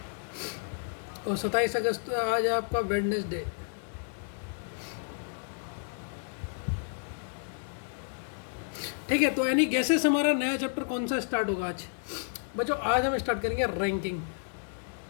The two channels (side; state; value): right; silent; 57 dB below the other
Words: और 27 अगस्त आज है आपका वेडनेसडे। ठीक है, तो यानी गैसेस हमारा नया चैप्टर कौन सा स्टार्ट होगा आज। बच्चों, आज हम स्टार्ट करेंगे रैंकिंग।